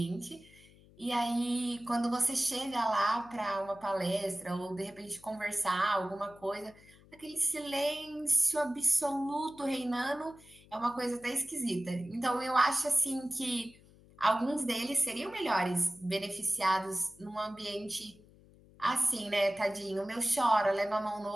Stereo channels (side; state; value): left; noise; hum, 25 dB below the sound